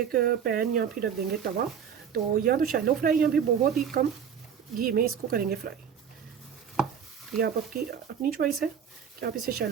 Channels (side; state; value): left; quieter; 7.8 dB